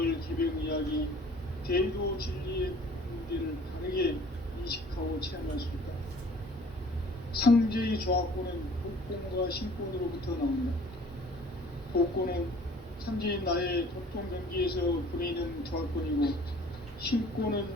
개벽 이야기, 대도 진리의 문제를 바르게 인식하고 체험할 수 있다. 상제의 조합권은 복권과 신권으로부터 나온다. 복권은 상제인 나의 도통 경기에서 보내는 조합권이고, 신권은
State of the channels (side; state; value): both; normal; correlation 0.51